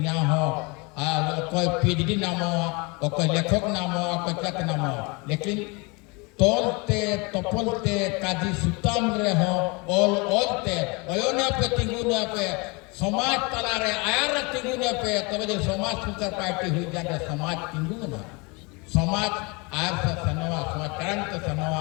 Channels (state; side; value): quieter; right; 28.6 dB